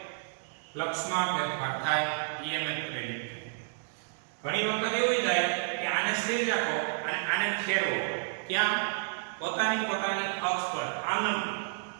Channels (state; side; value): silent; left; digital silence